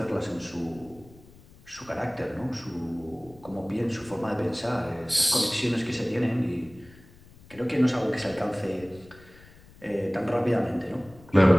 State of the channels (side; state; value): left; noise; rumble, 24 dB below the sound